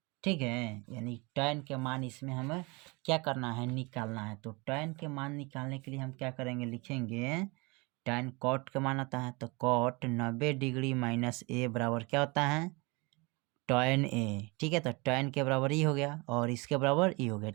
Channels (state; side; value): quieter; left; 27.2 dB